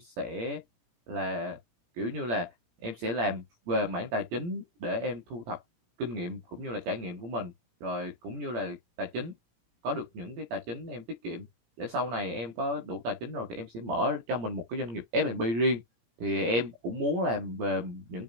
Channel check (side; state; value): left; late; 17 ms